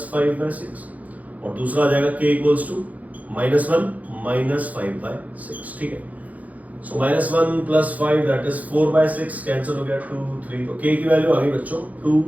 5 by 6, और दूसरा आ जाएगा k equals to minus 1 minus 5 by 6। ठीक है, so minus 1 plus 5 that is 4 by 6, cancel हो गया 2 3, तो k की वैल्यू आ गई बच्चों 2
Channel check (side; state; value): left; late; 0.075 ms